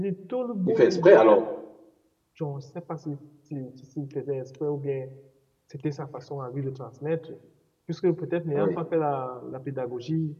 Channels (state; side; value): identical; both; correlation 1.00